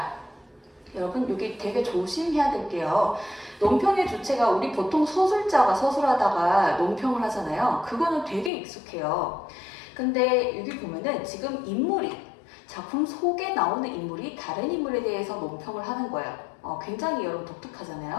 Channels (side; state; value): right; drops out; at 8.5 s